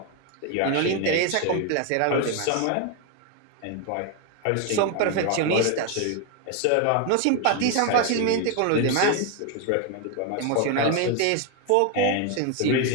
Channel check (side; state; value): both; different; correlation 0.01